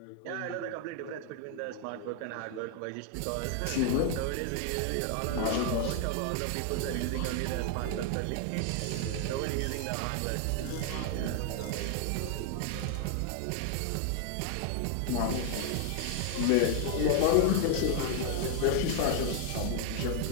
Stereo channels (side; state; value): both; different; correlation 0.00